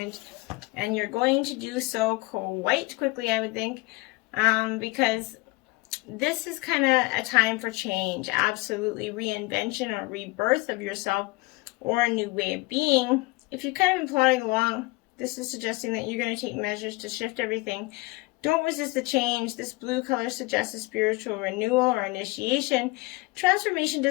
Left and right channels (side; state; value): right; quieter; 24.1 dB